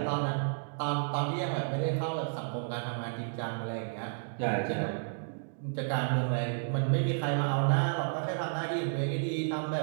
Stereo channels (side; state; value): left; silent; digital silence